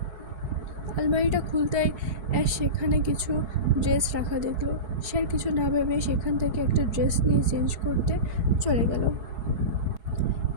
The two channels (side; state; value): left; late; 4.7 ms